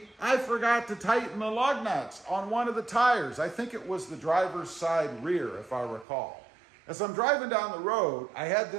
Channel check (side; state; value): left; drops out; at 6.1 s